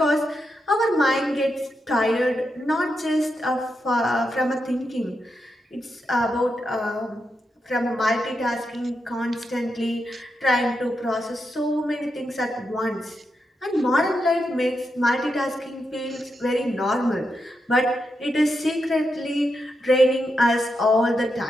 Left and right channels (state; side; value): normal; both; correlation 0.85